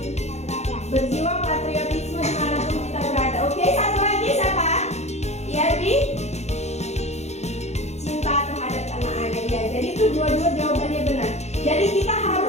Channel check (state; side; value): late; right; 0.32 ms